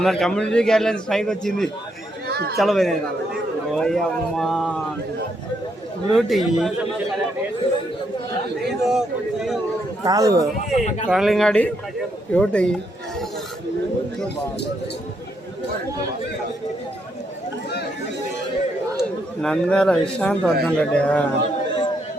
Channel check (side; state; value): both; normal; correlation 0.77